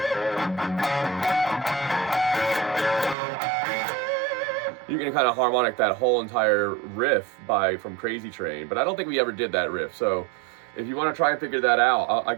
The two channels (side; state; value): left; drops out; at 3.2 s